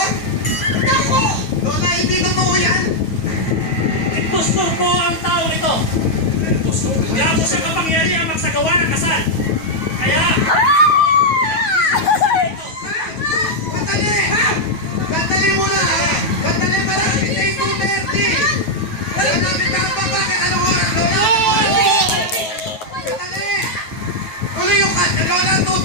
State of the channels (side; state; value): right; late; 9.3 ms